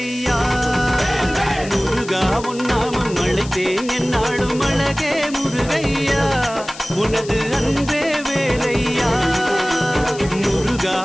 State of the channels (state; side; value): noise; left; hiss, 16 dB below the sound